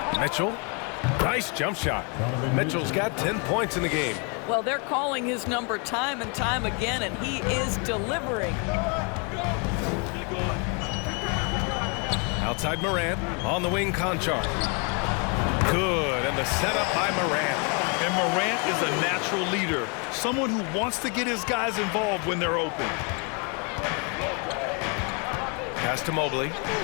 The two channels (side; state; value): right; quieter; 35.0 dB